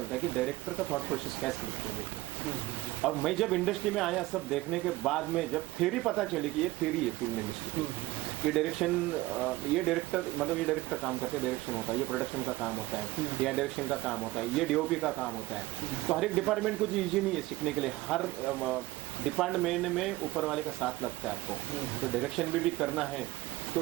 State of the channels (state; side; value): quieter; left; 18.9 dB